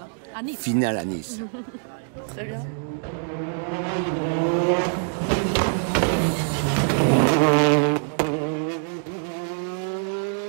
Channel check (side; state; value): left; silent; digital silence